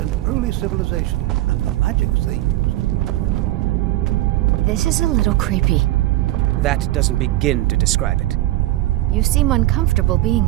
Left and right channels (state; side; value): quieter; left; 16.3 dB